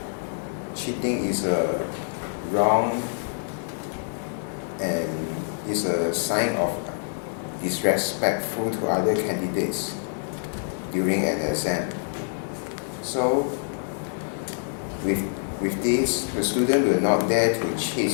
cheating is wrong and is a sign of disrespectful to other candidates during an exam. So with this, the student will not dare to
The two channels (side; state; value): right; silent; digital silence